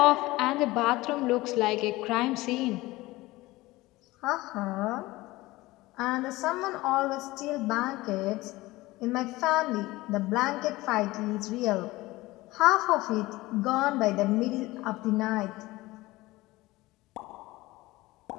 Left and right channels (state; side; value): quieter; right; 19.5 dB